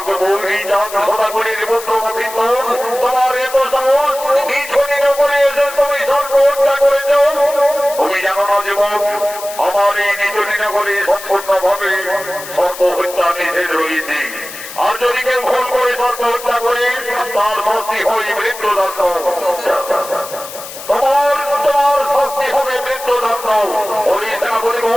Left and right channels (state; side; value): noise; left; hiss, 12 dB below the sound